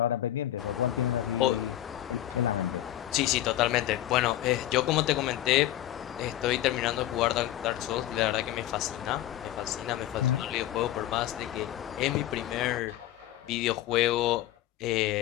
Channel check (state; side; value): quieter; right; 13.5 dB